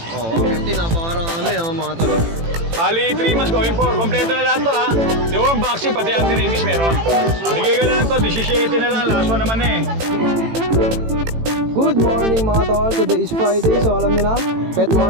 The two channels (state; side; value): late; left; 18 ms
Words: Oo, 50, napakarami, oh, mga tol. Bali, 3 months going for. Kompleto na lahat to ha. Yung vaccine, pati anti-rabies meron. Bigay ko na lang to, 17 na lang. Last one naman eh. Good morning mga tol, today is Friday, so alam nyo na, pet